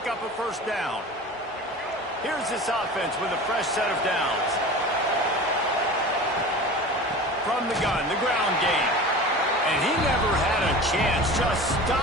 up a first down. Here's this offense with a fresh set of downs. From the gun, the ground game. And he never had a chance. Just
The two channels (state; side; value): normal; both; correlation 0.35